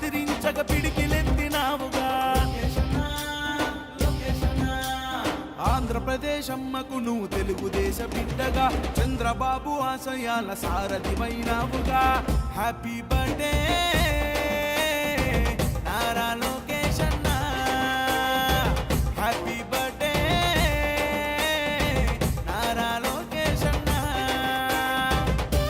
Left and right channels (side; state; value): both; identical; correlation 1.00